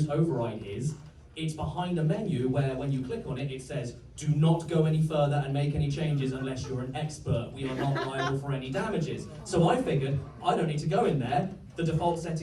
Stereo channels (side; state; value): both; identical; correlation 1.00